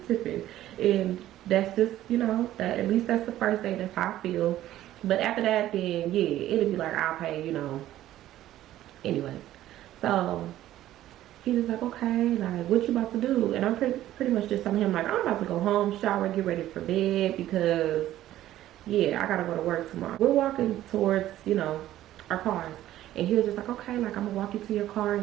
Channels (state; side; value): quieter; left; 13.7 dB